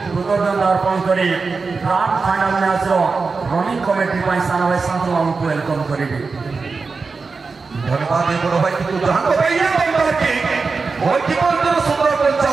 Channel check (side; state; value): left; quieter; 4.5 dB